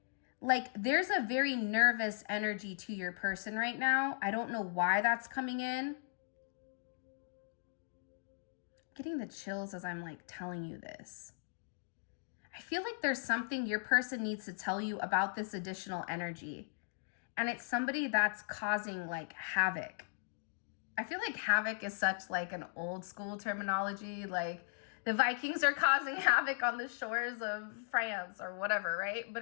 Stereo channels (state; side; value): silent; right; digital silence